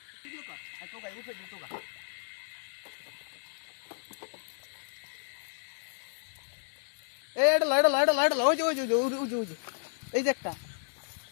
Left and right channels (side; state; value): right; silent; 56 dB below the other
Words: ভিডিও কর আর তো গাই উঠে দিতো গা এ এটা লয়টা ওই যে এই যে একটা